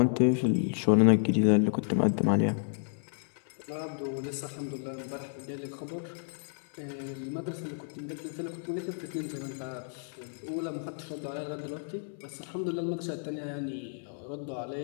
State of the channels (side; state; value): right; silent; 57 dB below the other